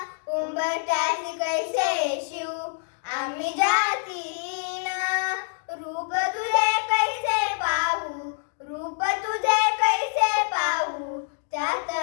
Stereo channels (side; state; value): right; silent; digital silence